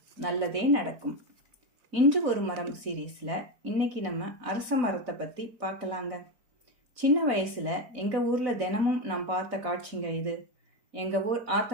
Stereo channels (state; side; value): late; left; 4.1 ms